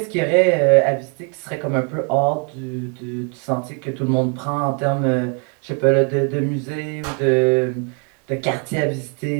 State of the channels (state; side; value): quieter; left; 38.3 dB